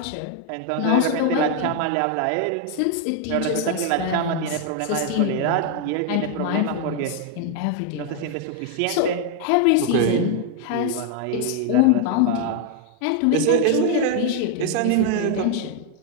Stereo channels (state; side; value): different; both; correlation 0.01